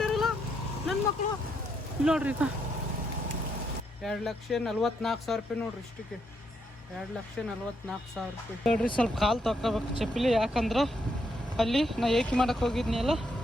ನನ್ನ ಮಕ್ಕಳು. ನೋಡ್ರಿ 2,44,000 ರೂಪಾಯಿ ನೋಡ್ರಿ ಇಷ್ಟಕ್ಕೆ. 2,44,000 ರೂಪಾಯಿ ನೋಡ್ರಿ. ಸ್ವಲ್ಪ ಕಾಲು ತೊಗೋಬೇಕು ಚಪ್ಪಲಿ, ಯಾಕಂದ್ರೆ ಅಲ್ಲಿ ನಾ ಏಕಿ ಮಾಡಕ್ಕೆ ಹೋಗಿದ್ನಿ ಅಲ್ಲ.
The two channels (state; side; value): normal; both; correlation 0.77